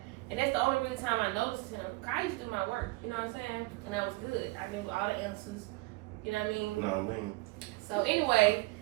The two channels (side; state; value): left; quieter; 23.3 dB